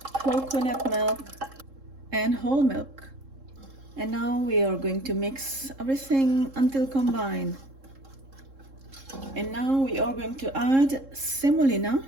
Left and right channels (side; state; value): left; late; 3.7 ms